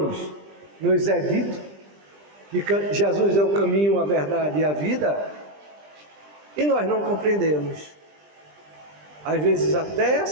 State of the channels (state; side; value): late; left; 20 ms